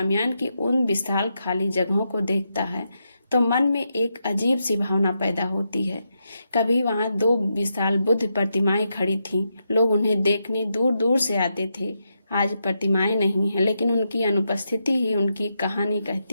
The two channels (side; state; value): both; inverted; correlation -0.84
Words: की उन विशाल खाली जगहों को देखता है तो मन में एक अजीब सी भावना पैदा होती है। कभी वहां 2 विशाल बुद्ध प्रतिमाएं खड़ी थीं, लोग उन्हें देखने दूर दूर से आते थे। आज प्रतिमाएं नहीं है, लेकिन उनकी अनुपस्थिति ही उनकी कहानी